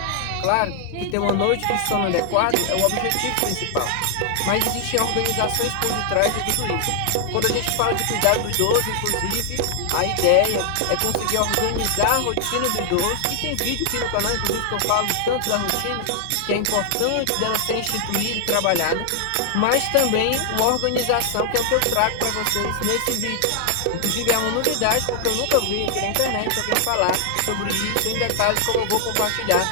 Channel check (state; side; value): different; both; correlation -0.01